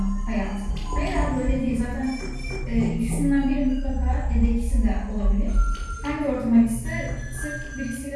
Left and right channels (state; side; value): identical; both; correlation 1.00